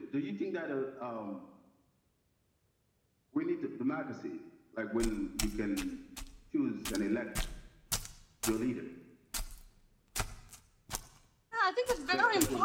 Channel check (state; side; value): identical; both; correlation 1.00